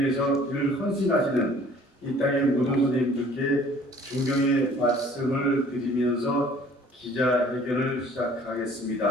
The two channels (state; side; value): normal; both; correlation 0.53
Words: 늘 헌신하시는 이 땅의 모든 선생님들께 존경의 말씀을 드리면서 기자회견을